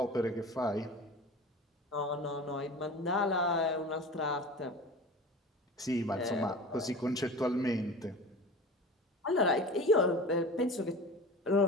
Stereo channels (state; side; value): normal; both; correlation 0.35